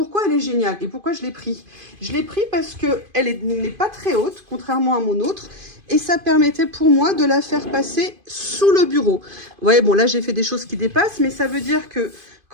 elle est géniale et pourquoi je l'ai pris? Je l'ai pris parce qu'elle n'est pas très haute, contrairement à mon autre. Et ça permettait pour moi de la faire passer sous le bureau. Ouais, bon, là, j'ai fait des choses qui dépassent, mais ça veut dire que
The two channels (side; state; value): left; late; 2.5 ms